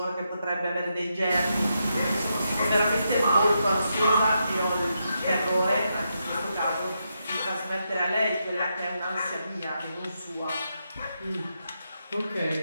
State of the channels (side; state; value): both; inverted; correlation -0.83